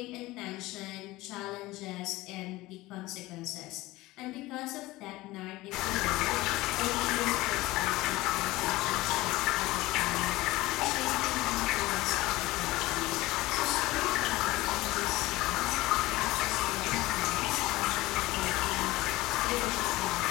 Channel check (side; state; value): right; quieter; 19.0 dB